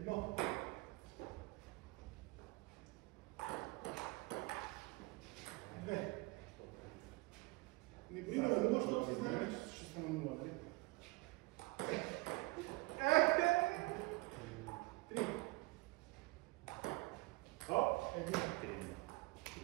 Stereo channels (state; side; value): quieter; left; 24.7 dB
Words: Две. Не бри на нула, защото си знаем, че ще съм на нула. Три. Оп!